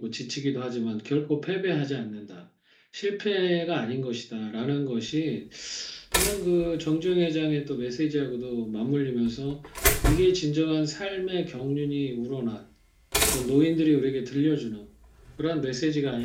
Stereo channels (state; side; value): identical; both; correlation 1.00